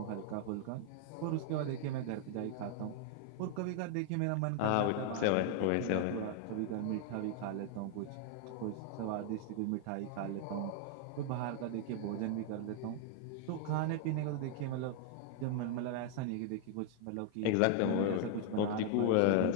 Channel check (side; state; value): both; different; correlation 0.00